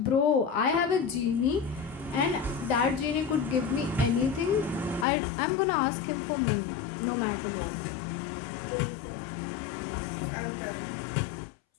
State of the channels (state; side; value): drops out; right; at 5.1 s